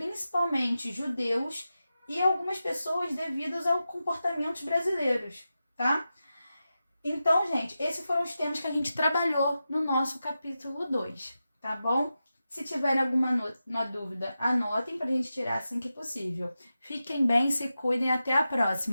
judeus e algumas pessoas devido aos comportamentos brasileiros, tá? Então, gente, esses foram os temas que a gente trabalhou no nosso capítulo 2, tá bom? Se tiverem alguma dúvida, anotem pra gente tirar assim que possível. Fiquem bem, se cuidem, até a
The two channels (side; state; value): both; inverted; correlation -0.91